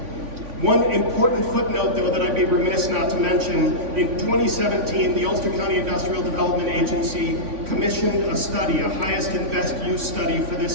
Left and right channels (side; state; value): left; late; 3.5 ms